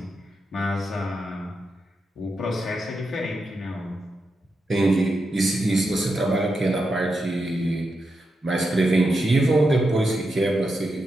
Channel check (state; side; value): normal; both; correlation 0.87